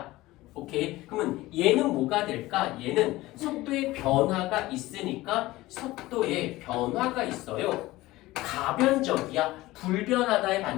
오케이? 그러면 얘는 뭐가 될까? 얘는 속도의 변화가 있으니까 속도에 변화가 있어요. 가변적이야. 불변하다의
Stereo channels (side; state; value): right; quieter; 18.4 dB